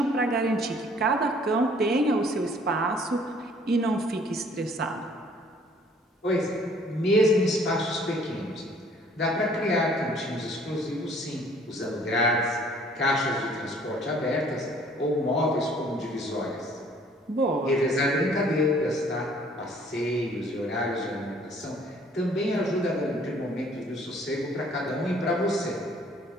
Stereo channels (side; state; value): both; normal; correlation 0.57